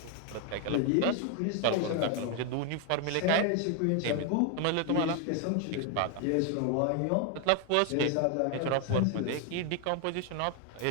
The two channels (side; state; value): both; different; correlation 0.01